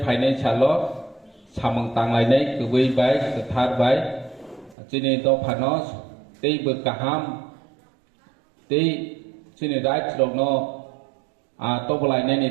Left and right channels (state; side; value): drops out; left; at 4.8 s